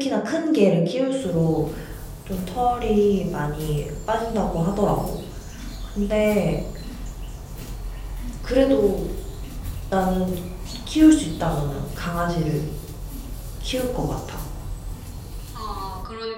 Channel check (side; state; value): both; identical; correlation 1.00